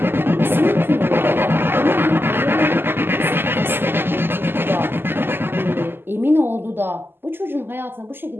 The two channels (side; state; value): left; late; 0.10 ms